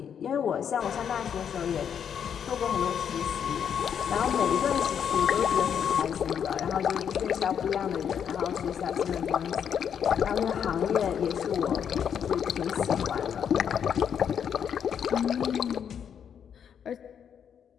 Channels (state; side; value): quieter; right; 8.1 dB